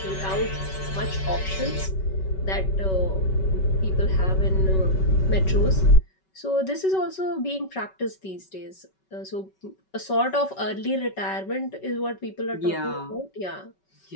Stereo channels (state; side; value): late; right; 5.3 ms